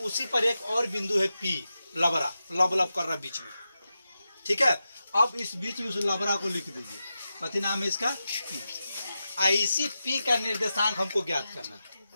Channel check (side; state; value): both; inverted; correlation -0.91